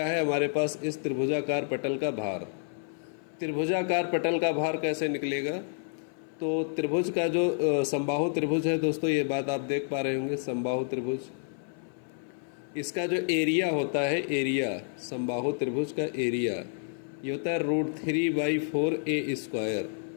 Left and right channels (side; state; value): right; silent; 55 dB below the other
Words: है, हमारे पास इस त्रिभुजाकार पटल का भार। त्रिभुजाकार पटल का भार कैसे निकलेगा? तो त्रिभुज का जो समबाहु त्रिभुज है दोस्तों, ये बात आप देख पा रहे होंगे, समबाहु त्रिभुज, इसका जो एरिया होता है, एरिया समबाहु त्रिभुज का एरिया ये होता है √3/4a²।